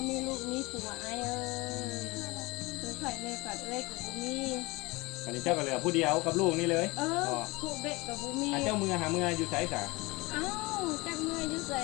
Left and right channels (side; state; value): right; quieter; 23.5 dB